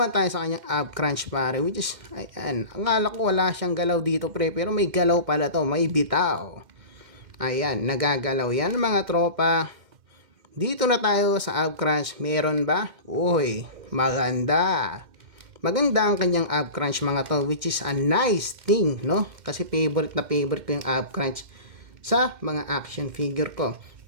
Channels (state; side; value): late; left; 2.1 ms